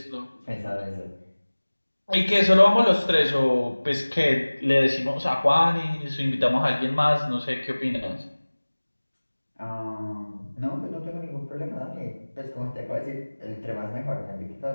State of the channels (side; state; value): both; inverted; correlation -1.00